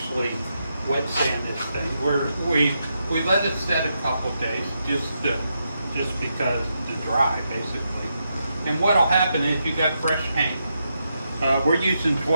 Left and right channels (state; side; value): inverted; both; correlation -0.83